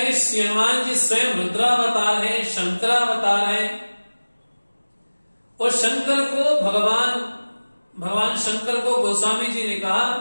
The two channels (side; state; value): both; inverted; correlation -1.00